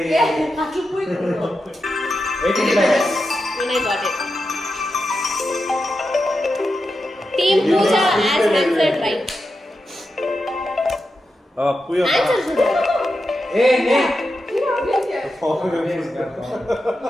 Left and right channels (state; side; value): normal; both; correlation 0.88